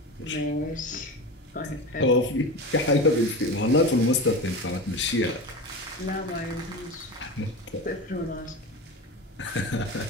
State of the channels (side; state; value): both; normal; correlation 0.27